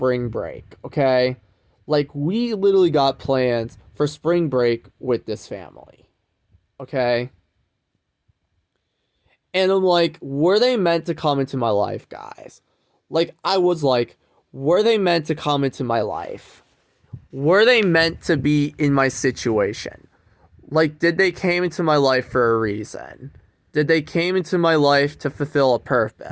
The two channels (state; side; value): identical; both; correlation 1.00